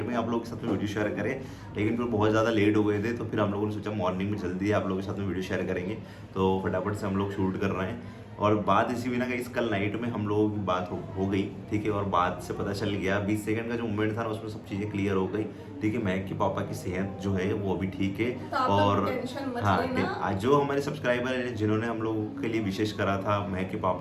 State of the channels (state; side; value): identical; both; correlation 1.00